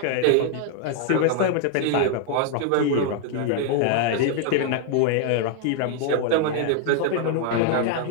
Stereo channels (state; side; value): different; both; correlation 0.00